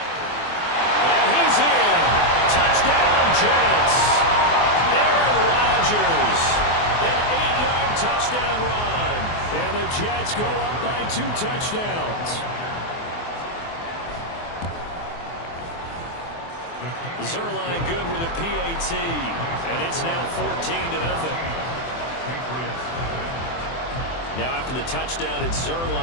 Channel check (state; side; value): late; right; 24 ms